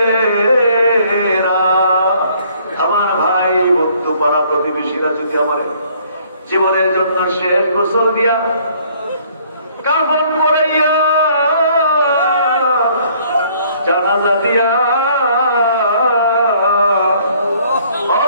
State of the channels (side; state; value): both; inverted; correlation -0.61